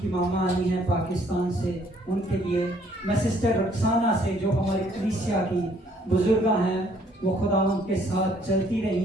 मामा आई हैं पाकिस्तान से, उनके लिए मैं सिस्टर रक्साना से जो हमारी कलीसिया की बुजुर्गा हैं, वो खुदा उनके साथ चलती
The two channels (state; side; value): normal; both; correlation 0.63